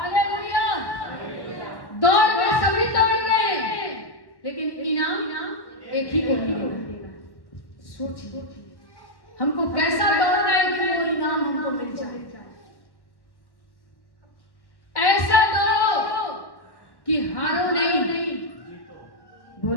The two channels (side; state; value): right; late; 1.1 ms